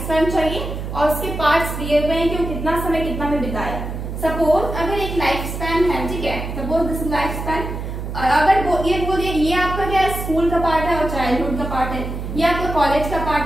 स्पैन चाहिए और उसके पार्ट्स दिए हुए हैं कि वो कितना समय कितना में बिताया। सपोज अगर एक लाइफ स्पैन है, ठीक है, सपोज दिस लाइफ स्पैन, अगर ये आपका क्या है, स्कूल का पार्ट है और चाइल्डहुड का पार्ट है, ये आपका कॉलेज का पार्ट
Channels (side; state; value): right; noise; hum, 6 dB below the sound